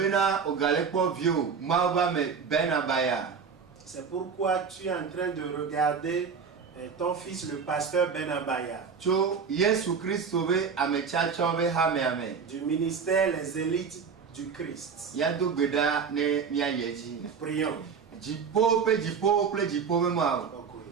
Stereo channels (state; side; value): quieter; left; 6.1 dB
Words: C'est pourquoi tu es en train de regarder ton fils, le pasteur Ben Abaya. Du ministère Les Élites du Christ. Prions.